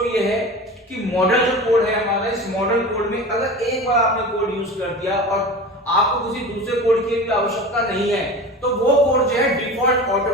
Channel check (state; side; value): normal; both; correlation 0.33